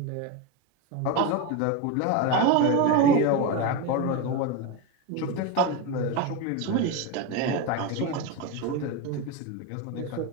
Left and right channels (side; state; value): both; different; correlation 0.04